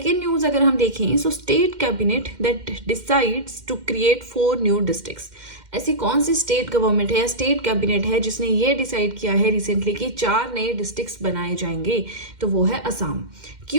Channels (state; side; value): late; left; 2.1 ms